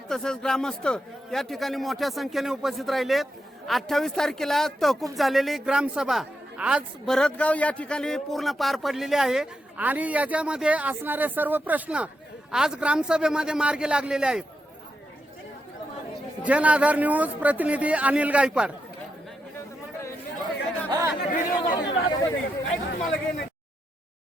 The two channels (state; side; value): normal; both; correlation 0.85